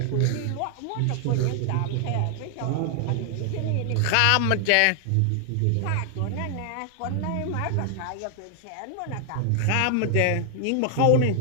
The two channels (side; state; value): both; different; correlation 0.00